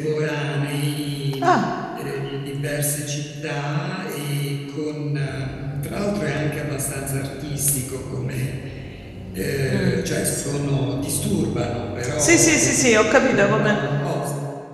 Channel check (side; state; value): both; identical; correlation 1.00